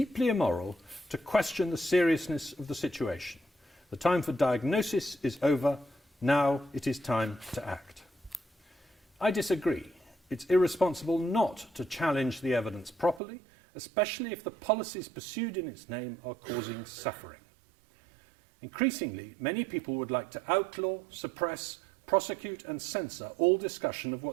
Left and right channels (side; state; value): left; drops out; at 13.2 s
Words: immoral to question the seriousness of the situation. The time for diagnosis is over. Now it is time to act. I disagree. It's irresponsible not to challenge the evidence properly, especially if the policies pursued in its name are causing suffering. Increasingly, many people would like to outlaw, suppress, prosecute and censor all discussion of